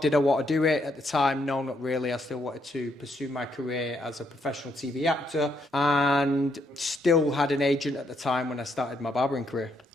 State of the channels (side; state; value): both; normal; correlation 0.75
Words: Did I want to do it at the time? No, not really. I still wanted to pursue my career as a professional TV actor, and still had an agent at the time when I started my barbering career.